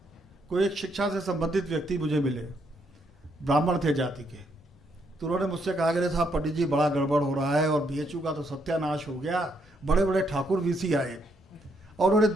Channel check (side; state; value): both; normal; correlation 0.74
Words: कोई एक शिक्षा से संबंधित व्यक्ति मुझे मिले, ब्राह्मण थे जाति के, तो उन्होंने मुझसे कहा कि साहब पंडित जी बड़ा गड़बड़ हो रहा है और बीएचयू का तो सत्यानाश हो गया, बड़े बड़े ठाकुर वीसी आए, और उन्होंने